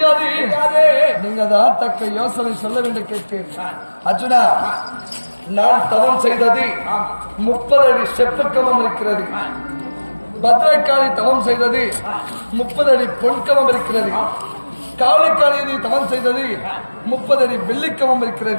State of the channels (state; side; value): inverted; both; correlation -1.00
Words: நீங்க தான் தக்க யோசனை சொல்ல வேண்டும் கேட்டேன். அர்ஜுனா, நான் தவம் செய்தது 30 அடி செப்புக்கமம் இருக்கிறது. பத்ரகாளி தவம் செய்தது 30 அடி பொன்கமம் இருக்கிறது. காளிக்காளி தவம் செய்தது 30 அடி வெள்ளிக்கமம்